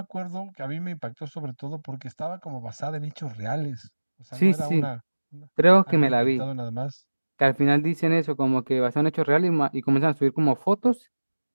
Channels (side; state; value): both; inverted; correlation -1.00